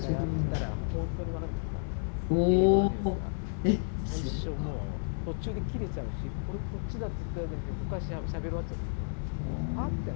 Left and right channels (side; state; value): right; silent; digital silence